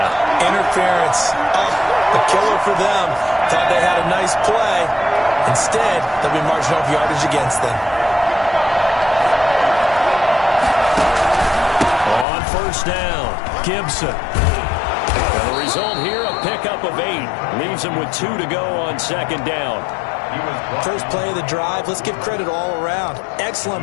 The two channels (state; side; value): drops out; right; at 12.2 s